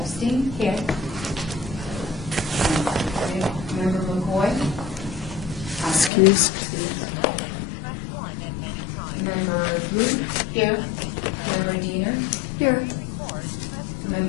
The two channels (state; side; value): drops out; right; at 6.1 s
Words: Here. Member McCoy. Excuse. Member Blue. Here. Member Diener. Here.